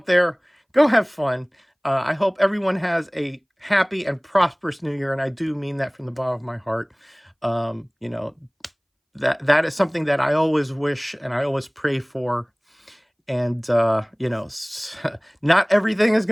there. Go have fun. I hope everyone has a happy and prosperous New Year, and I do mean that from the bottom of my heart. That is something that I always wish and I always pray for. And, not everything is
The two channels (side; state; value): both; identical; correlation 1.00